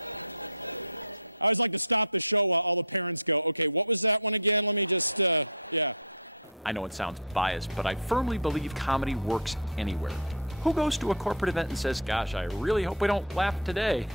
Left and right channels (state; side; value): normal; both; correlation -0.04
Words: I always like to stop the show while all the parents go, okay, what was that one again? Let me just, I know it sounds biased, but I firmly believe comedy works anywhere. Who goes to a corporate event and says, gosh, I really hope we don't laugh today?